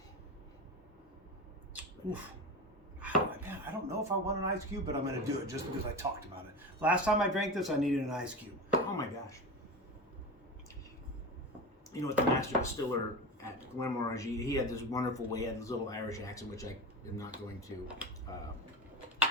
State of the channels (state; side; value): normal; both; correlation 0.26